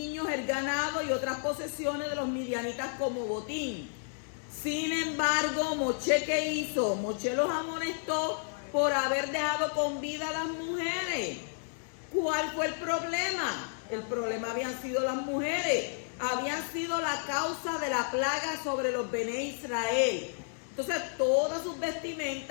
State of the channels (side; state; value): right; silent; digital silence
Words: el ganado y otras posesiones de los midianitas como botín. Sin embargo, Moshe, ¿qué hizo? Moshe los amonestó por haber dejado con vida a las mujeres. ¿Cuál fue el problema? El problema habían sido las mujeres. Habían sido la causa de la plaga sobre los Bené Israel. Entonces, todas sus